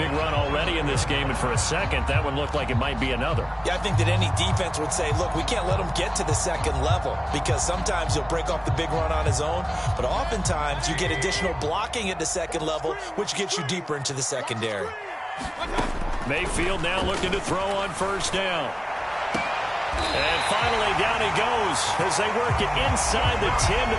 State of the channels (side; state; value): both; identical; correlation 1.00